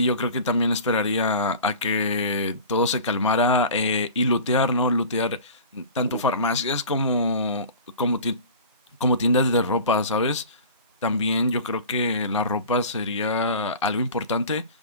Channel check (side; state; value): both; inverted; correlation -0.38